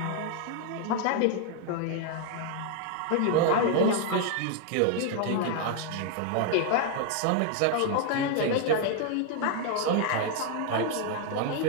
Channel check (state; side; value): different; both; correlation 0.00